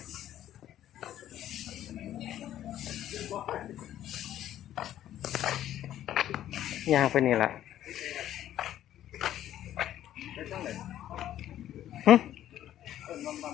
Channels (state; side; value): quieter; right; 12.1 dB